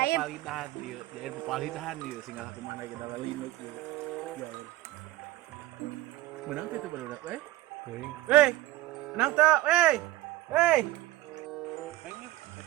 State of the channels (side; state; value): left; quieter; 17.0 dB